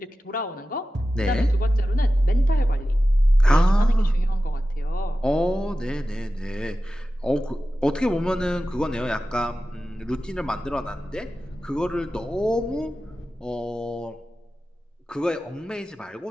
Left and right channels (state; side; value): normal; both; correlation 0.94